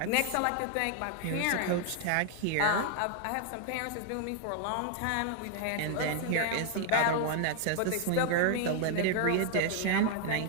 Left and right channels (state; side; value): different; both; correlation 0.00